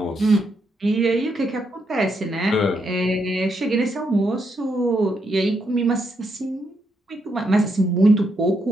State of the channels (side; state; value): both; normal; correlation 0.79